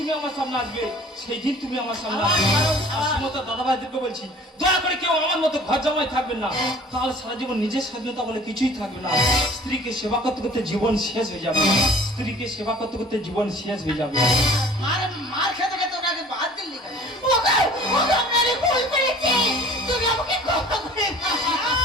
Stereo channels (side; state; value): both; normal; correlation 0.48